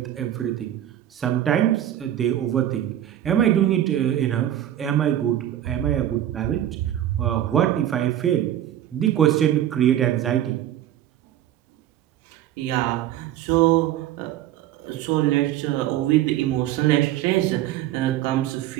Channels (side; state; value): left; quieter; 12.0 dB